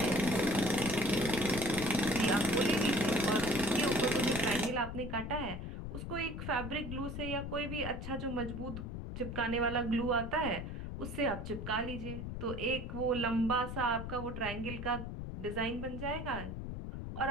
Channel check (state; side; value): noise; left; rumble, 6 dB below the sound